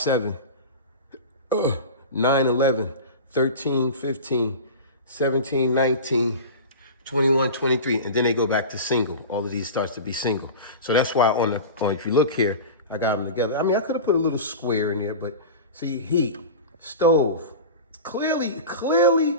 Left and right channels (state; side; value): inverted; both; correlation -0.30